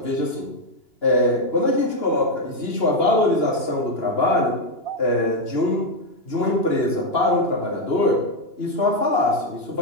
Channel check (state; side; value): late; right; 2.9 ms